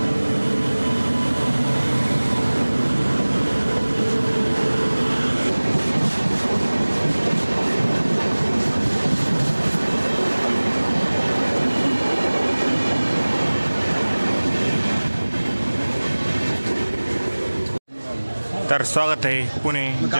तर स्वागत आहे पुणे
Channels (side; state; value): both; inverted; correlation -1.00